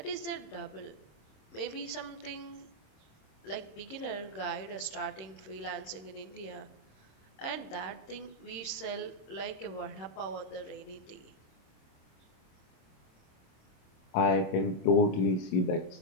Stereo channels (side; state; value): right; late; 27 ms